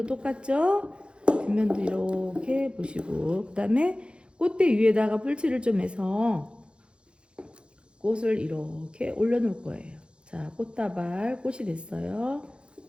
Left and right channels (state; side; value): late; left; 0.056 ms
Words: 똑같죠? 뒷면도 이렇게 보시고 그 다음에 꽃대 위에다가 풀칠을 좀 해서 꽃을 이렇게 올려놓을 거예요. 자, 꽃다발 꽃이 됐어요.